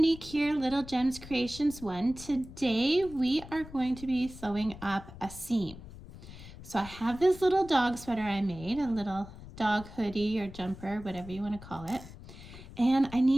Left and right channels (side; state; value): left; noise; rumble, 15 dB below the sound